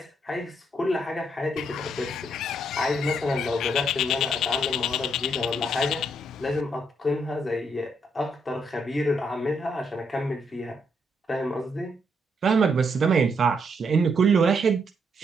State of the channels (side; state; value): both; normal; correlation 0.75